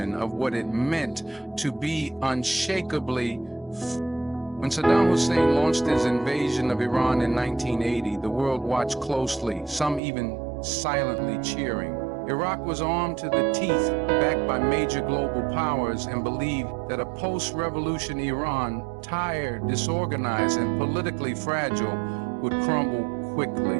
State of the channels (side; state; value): left; drops out; at 10.0 s